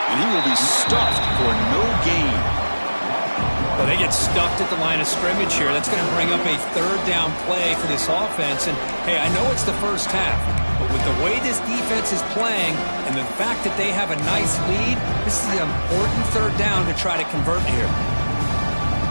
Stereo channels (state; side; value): inverted; both; correlation -1.00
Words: And he will be stuffed for no gain. Well, they get stuffed at the line of scrimmage here. That's going to bring up a third down play for this offense. And, hey, I know it's the first half, but with the way this defense is playing and the fact that they have a nice lead, this is an important third down to try to convert here.